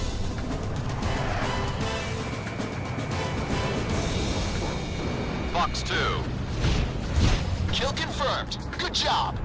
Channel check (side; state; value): both; identical; correlation 1.00